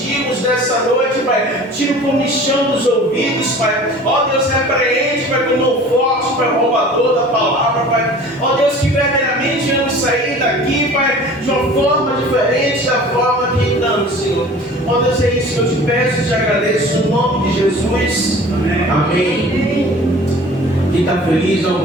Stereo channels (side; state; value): both; normal; correlation 0.44